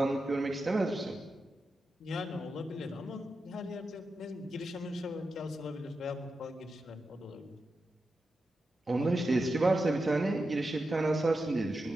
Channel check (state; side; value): normal; both; correlation 0.89